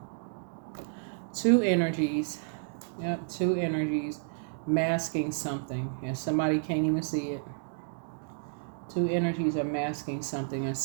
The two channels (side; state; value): left; silent; digital silence